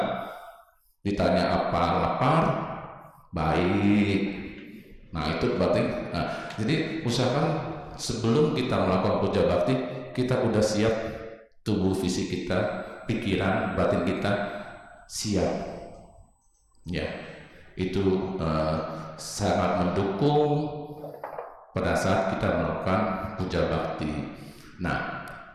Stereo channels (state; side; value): identical; both; correlation 1.00